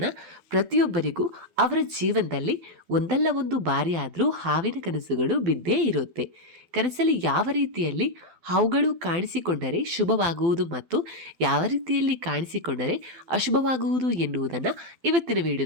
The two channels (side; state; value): left; late; 12 ms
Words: ಪ್ರತಿಯೊಬ್ಬರಿಗೂ ಅವರ ಜೀವನದಲ್ಲಿ ಒಂದಲ್ಲ ಒಂದು ಬಾರಿ ಆದರೂ ಹಾವಿನ ಕನಸುಗಳು ಬಿದ್ದೇ ಇರುತ್ತೆ. ಕನಸಲ್ಲಿ ಯಾವ ರೀತಿಯಲ್ಲಿ ಹಾವುಗಳು ಕಾಣಿಸಿಕೊಂಡರೆ ಶುಭವಾಗುವುದು ಮತ್ತು ಯಾವ ರೀತಿಯಲ್ಲಿ ಕಾಣಿಸಿಕೊಂಡರೆ ಅಶುಭವಾಗುವುದು ಎನ್ನುವುದನ್ನು ಇವತ್ತಿನ